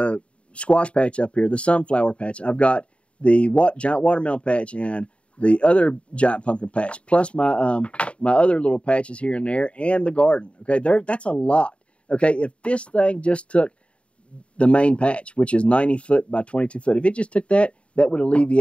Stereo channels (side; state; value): right; late; 0.060 ms